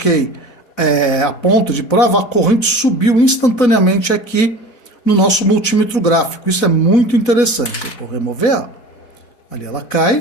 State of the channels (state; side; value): late; right; 4.0 ms